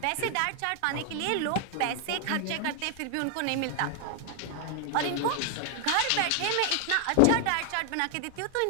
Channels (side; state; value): both; different; correlation 0.00